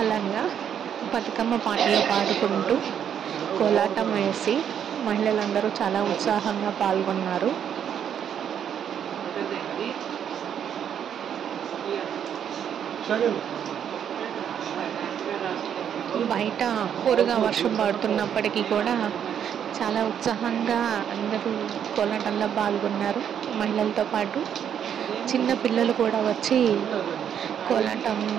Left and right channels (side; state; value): left; quieter; 8.8 dB